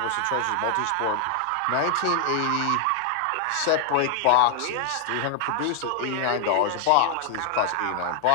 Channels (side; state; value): both; different; correlation 0.00